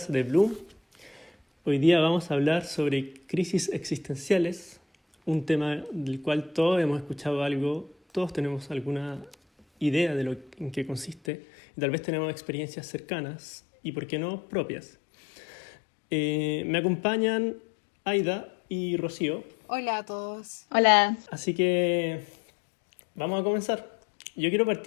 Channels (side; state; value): right; drops out; at 11.2 s